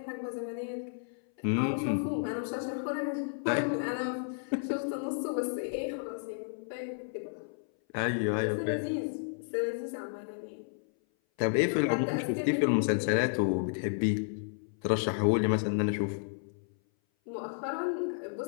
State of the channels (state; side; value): silent; right; 56 dB below the other